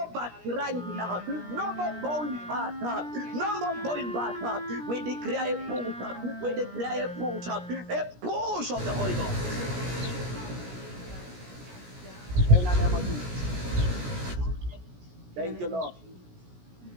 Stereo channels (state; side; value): late; left; 17 ms